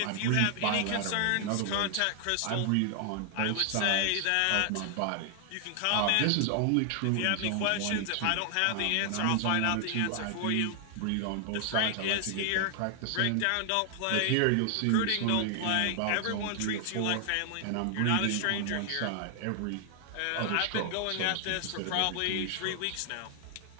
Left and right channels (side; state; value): both; different; correlation 0.00